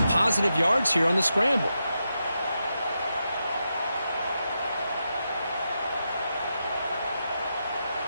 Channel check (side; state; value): both; inverted; correlation -0.86